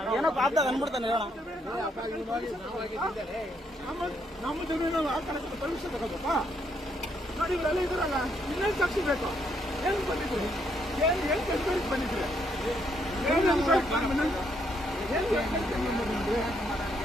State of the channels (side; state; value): both; normal; correlation 0.74